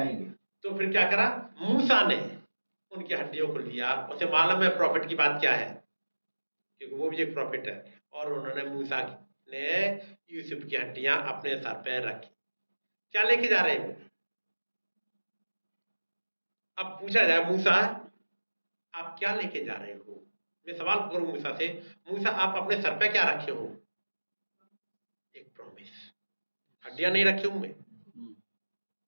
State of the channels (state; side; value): inverted; both; correlation -1.00